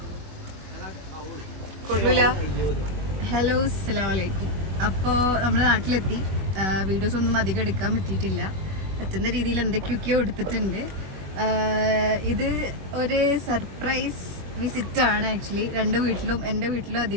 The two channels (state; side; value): late; left; 21 ms